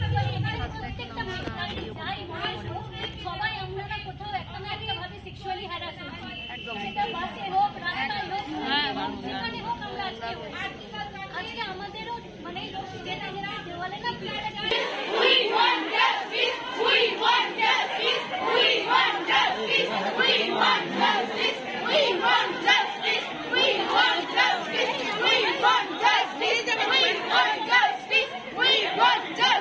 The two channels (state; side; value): identical; both; correlation 1.00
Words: পারি, এখানে প্রত্যেকটা মেয়ে যাই মানুষ হোক, সবাই আমরা না কোথাও একটা না একটা ভাবে সেক্সুয়ালি হ্যারাস হচ্ছি, সেটা বাসে হোক, রাস্তায় হোক, যেখানে হোক, আমরা আজকে আমাদেরও মানে যেটা দেওয়ালে না We want justice, we want justice, we want justice, we want justice, we want justice, we want justice, we want justice, we want justice, we want